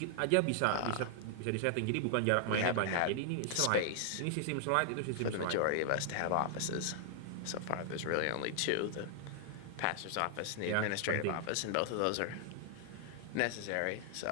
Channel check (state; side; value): different; both; correlation 0.00